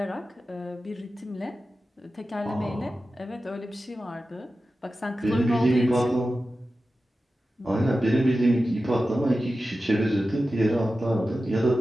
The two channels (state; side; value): normal; both; correlation 0.93